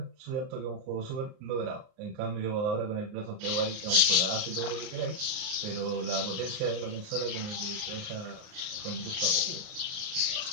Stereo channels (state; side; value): late; left; 38 ms